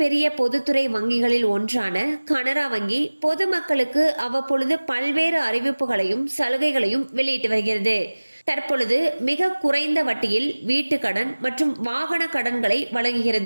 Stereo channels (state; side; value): inverted; both; correlation -1.00